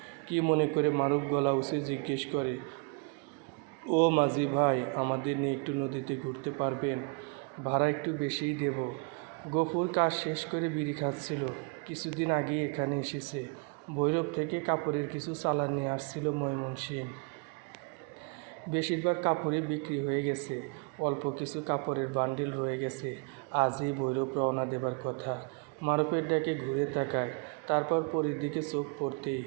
কি মনে করে মারুফ গলা উঁচে জিজ্ঞেস করে, ও মাঝি ভাই, আমাদের নিয়ে একটু নদীতে ঘুরতে পারবেন? ভাড়া একটু বেশিই দেব। গফুর কাজ শেষ করে বিড়ি খাচ্ছিল। কিছুদিন আগেই এখানে এসেছে। ভৈরব থেকে কাপড়ের কিছু চালান নিয়ে আসছিল ময়মনসিংহ। বেশিরভাগ কাপড়ই বিক্রি হয়ে গেছে। অল্প কিছু কাপড়ের বান্ডিল রয়ে গেছে। আজই ভৈরব রওনা দেবার কথা। মারুফের ডাকে ঘুরে তাকায়। তারপর পরীর দিকে চোখ পড়তেই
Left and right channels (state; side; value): quieter; left; 34.1 dB